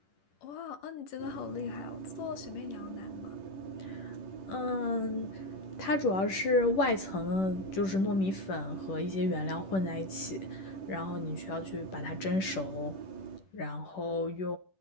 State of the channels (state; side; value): late; right; 10 ms